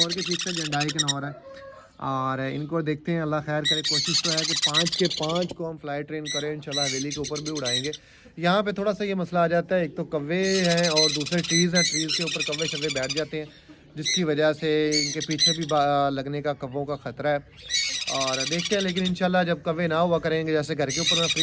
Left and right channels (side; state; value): both; identical; correlation 1.00